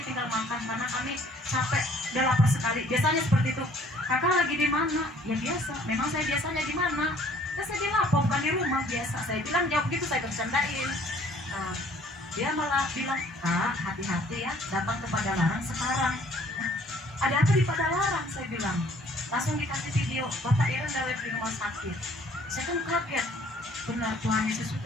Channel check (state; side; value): normal; both; correlation 0.58